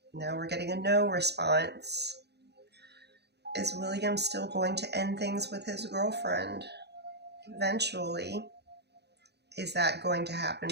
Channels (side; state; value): left; late; 0.49 ms